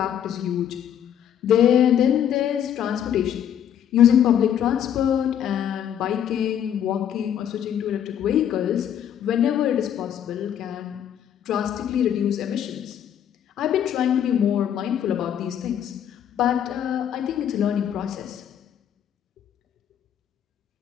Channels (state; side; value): quieter; right; 9.6 dB